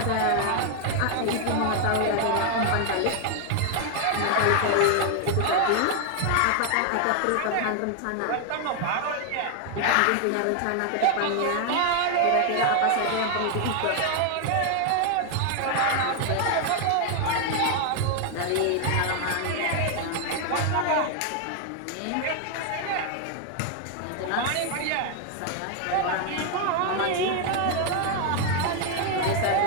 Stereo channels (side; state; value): both; different; correlation 0.00